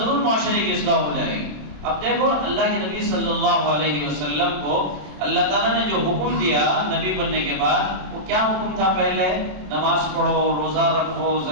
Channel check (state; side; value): late; left; 27 ms